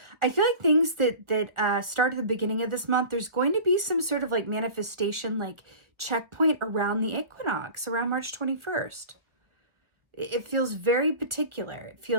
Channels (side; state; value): left; late; 1.1 ms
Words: I feel like things that start at the beginning of this month, there's going to be some sort of like manifestation, like checkpoint around the equinox, around March 21st. It feels very particular. It